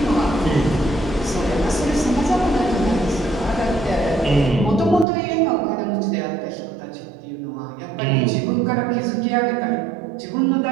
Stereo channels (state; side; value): drops out; left; at 5.1 s